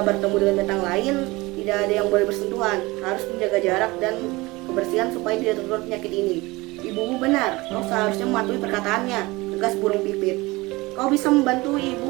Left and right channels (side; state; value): left; quieter; 22.1 dB